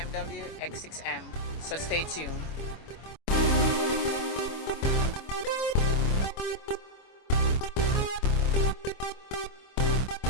X6M, so stay tuned.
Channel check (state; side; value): late; right; 25 ms